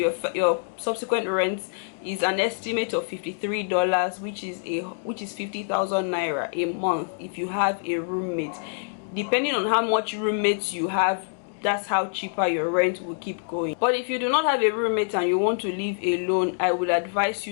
subsequent rent is an estimate of $53, which is 50,000 naira a month if you have a roommate. Depending on how much roommates you have, that's how cheaper your rent will keep going. But if you do not have a roommate and you want to live alone, I would advise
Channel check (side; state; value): right; silent; digital silence